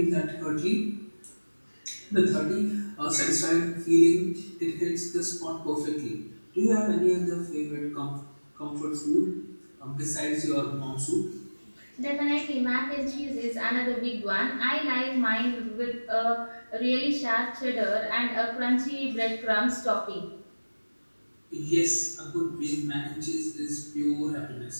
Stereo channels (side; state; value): both; inverted; correlation -1.00